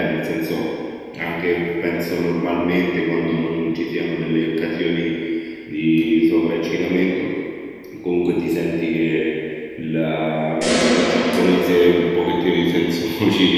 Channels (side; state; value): both; identical; correlation 1.00